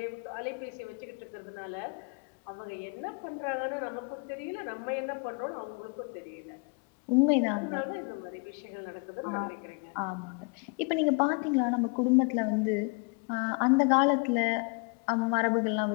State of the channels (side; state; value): right; quieter; 32.2 dB